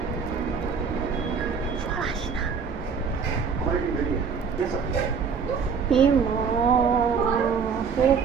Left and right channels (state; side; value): quieter; left; 5.9 dB